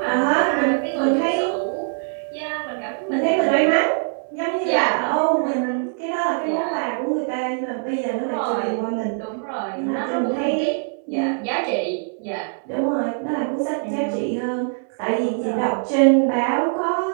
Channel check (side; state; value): left; silent; 64 dB below the other